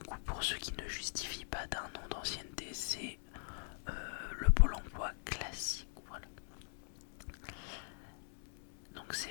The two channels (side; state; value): right; silent; digital silence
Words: pour ceux qui ne justifient pas d'1 an d'ancienneté, c'est le Pôle emploi classique. Voilà. Donc c'est